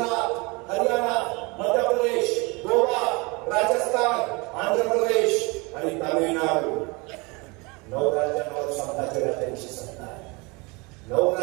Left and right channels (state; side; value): quieter; left; 27.2 dB